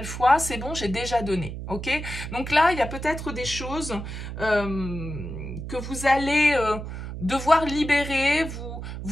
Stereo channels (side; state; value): right; noise; hum, 8 dB below the sound